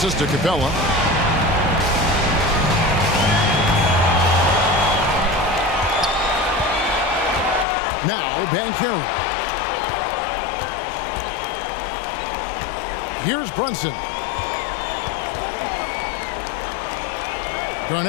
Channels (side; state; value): right; drops out; at 7.7 s